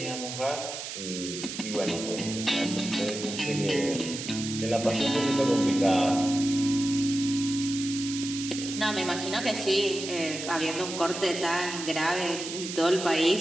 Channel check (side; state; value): right; noise; hiss, 7 dB below the sound